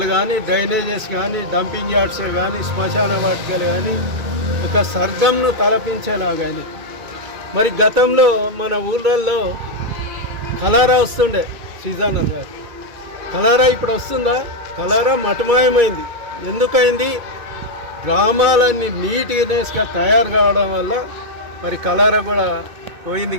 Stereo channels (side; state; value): left; late; 2.3 ms